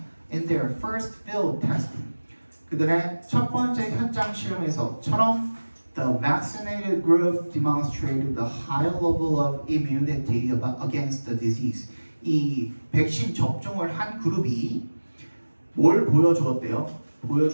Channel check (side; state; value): both; inverted; correlation -1.00